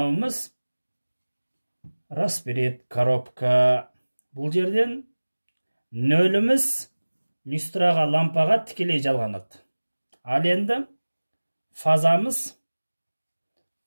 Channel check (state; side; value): inverted; both; correlation -1.00